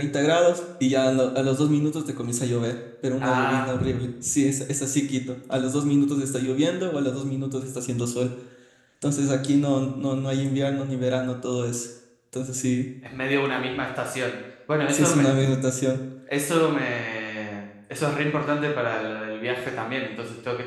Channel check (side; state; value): both; identical; correlation 1.00